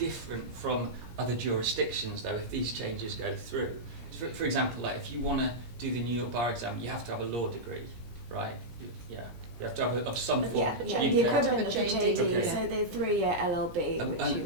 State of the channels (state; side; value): late; left; 17 ms